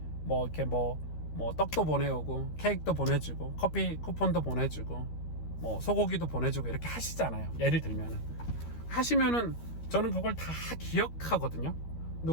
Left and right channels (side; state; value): right; late; 13 ms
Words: 뭐 이렇게 뭐 떡도 보내오고 케이크도 보내주고 커피 쿠폰도 보내주고 뭐 소고기도 보내주고 이렇게 하시잖아요. 예를 들면은 하시면은 저는 그걸 다 기억하거든요.